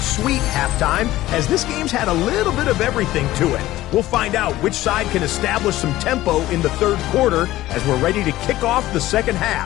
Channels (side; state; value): right; quieter; 15.9 dB